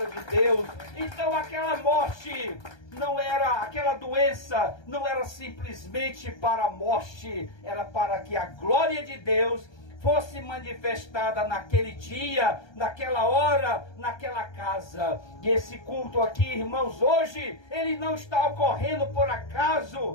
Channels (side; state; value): right; late; 1.3 ms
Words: de Deus. Então aquela morte não era, aquela doença não era simplesmente para a morte, era para que a glória de Deus fosse manifestada naquele dia, naquela hora, naquela casa. E esse culto aqui, irmãos, hoje, ele não está ocorrendo por